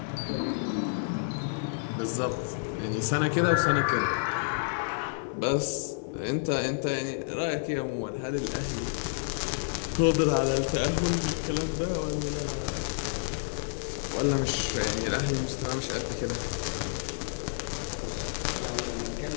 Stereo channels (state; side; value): silent; right; digital silence